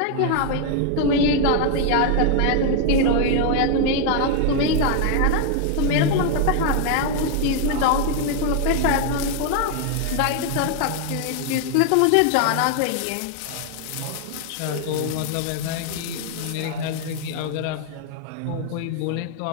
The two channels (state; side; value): different; both; correlation 0.00